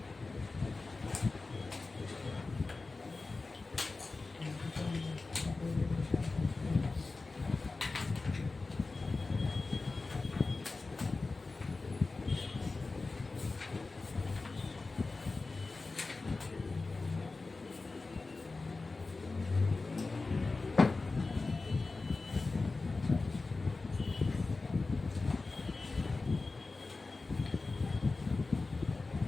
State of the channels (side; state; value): right; quieter; 3.7 dB